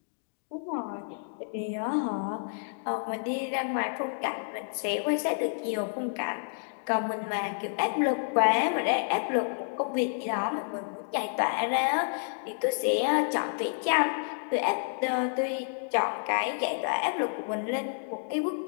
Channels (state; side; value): silent; right; digital silence